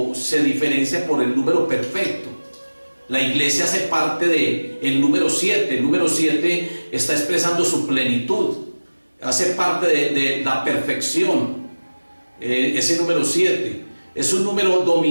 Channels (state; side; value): inverted; both; correlation -1.00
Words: se diferencia por el número perfecto. La iglesia hace parte del número 7. El número 7 está expresando su plenitud, hace parte de la perfección. Ese número 7 es un número